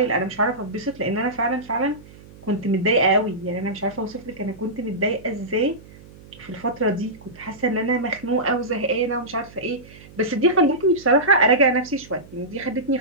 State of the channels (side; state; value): right; noise; hum, 21 dB below the sound